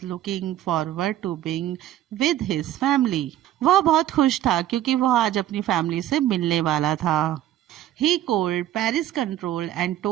looking forward to being with his family. वह बहुत खुश था क्योंकि वह आज अपनी फैमिली से मिलने वाला था. He called Paris Control and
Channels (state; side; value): quieter; left; 12.7 dB